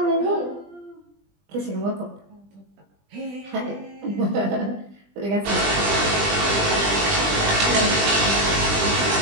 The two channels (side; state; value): left; late; 20 ms